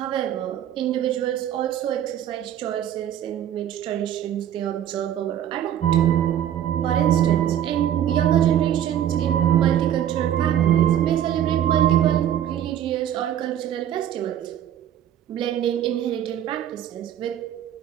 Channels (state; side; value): quieter; left; 10.7 dB